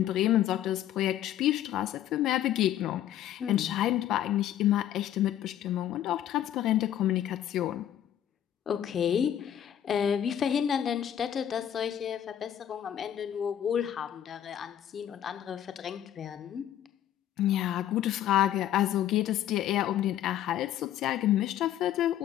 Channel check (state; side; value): quieter; right; 11.1 dB